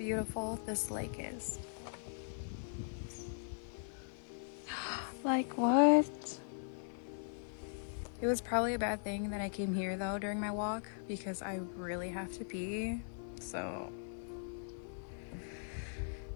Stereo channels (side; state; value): right; silent; 51 dB below the other